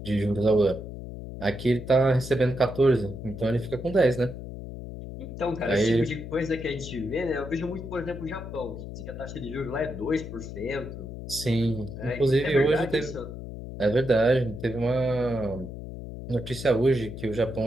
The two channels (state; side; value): noise; left; hum, 10 dB below the sound